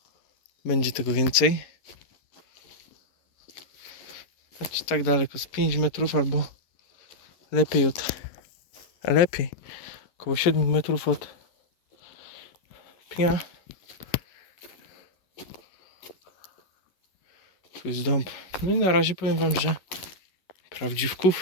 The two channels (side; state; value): right; late; 11 ms